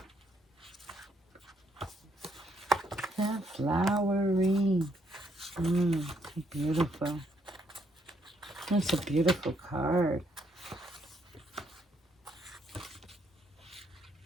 The flowering. Beautiful. That's a beautiful card.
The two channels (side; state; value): both; normal; correlation 0.73